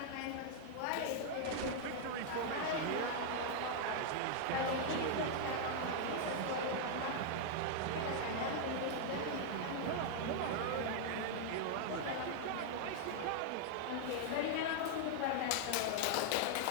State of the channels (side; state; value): both; different; correlation 0.00